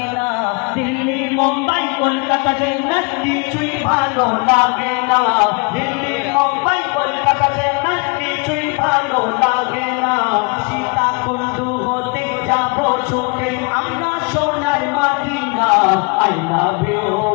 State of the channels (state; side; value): quieter; right; 31.0 dB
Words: না। দিল্লি মুম্বাই কলকাতা চেন্নাই কিছুই ভালো লাগে না। দিল্লি মুম্বাই কলকাতা চেন্নাই কিছুই ভালো লাগে না। সীতাকুণ্ডু হতে যাব ছুটে আমরা সোনার Madina. I love you